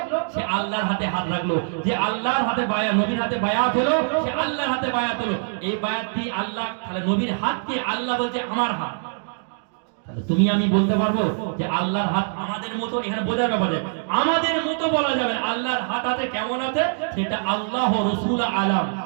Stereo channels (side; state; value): left; silent; digital silence